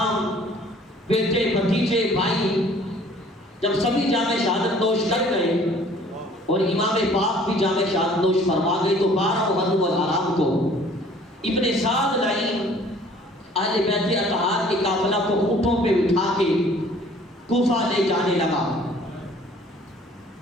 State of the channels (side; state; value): both; normal; correlation 0.54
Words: بیٹے، بھتیجے، بھائی، جب سبھی جامع شہادت نوش کر گئے اور امام پاک بھی جامع شہادت نوش فرما گئے، تو 12 محرم الحرام کو ابن سعد لعین اہل بیت اطہار کے قافلہ کو اونٹوں پہ اٹھا کے کوفہ لے جانے لگا،